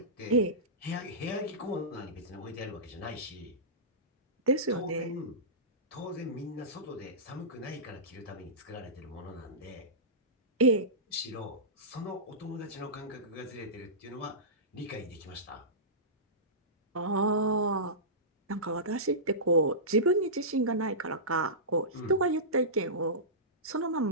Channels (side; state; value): both; normal; correlation -0.19